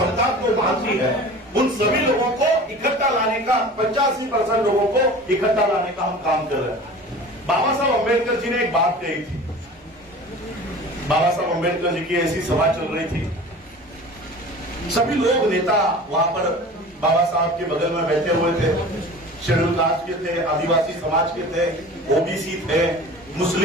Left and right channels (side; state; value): both; normal; correlation 0.39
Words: को मानती है, उन सभी लोगों को इकट्ठा लाने का, 85% लोगों को इकट्ठा लाने का हम काम कर रहे हैं। बाबा साहब अम्बेडकर जी ने एक बात कही थी। बाबा साहब अम्बेडकर जी की ऐसी सभा चल रही थी, सभी लोग नेता वहां पर बाबा साहब के बगल में बैठे हुए थे। शेड्यूल कास्ट के थे, आदिवासी समाज के थे, ओबीसी थे,